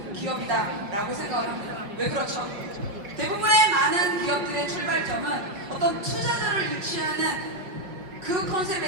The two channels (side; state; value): left; late; 5.4 ms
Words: 기업이다라고 생각을 합니다. 왜 그렇죠? 대부분의 많은 기업들의 출발점은 어떤 투자자를 유치하는 그